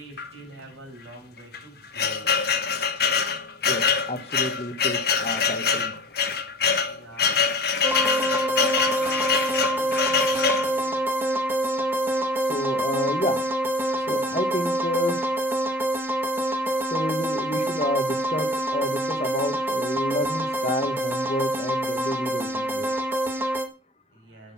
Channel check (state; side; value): normal; both; correlation 0.42